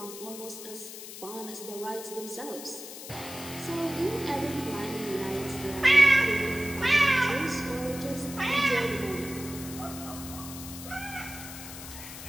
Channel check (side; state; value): left; noise; hiss, 12 dB below the sound